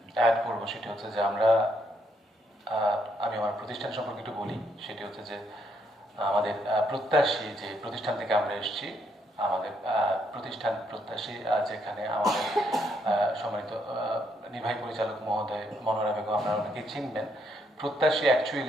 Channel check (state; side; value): normal; both; correlation 0.74